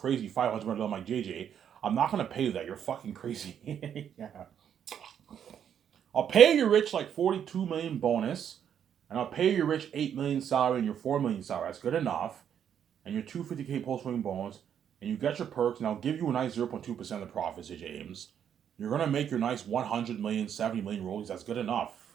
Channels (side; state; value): left; quieter; 8.8 dB